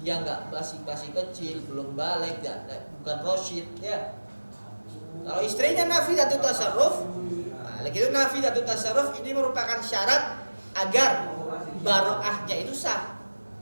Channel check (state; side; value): inverted; both; correlation -1.00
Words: nggak masih kecil, belum balik, bukan rosyid, ya. Kalau istrinya nafidatut tasarruf, nah, itu nafidatut tasarruf ini merupakan syarat agar baroahnya itu sah.